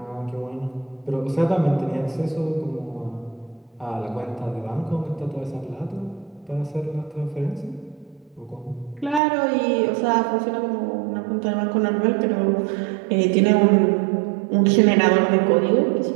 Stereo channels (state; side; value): drops out; left; at 9.2 s